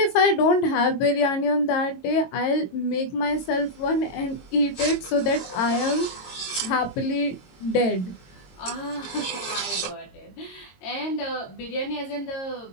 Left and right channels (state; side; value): late; right; 22 ms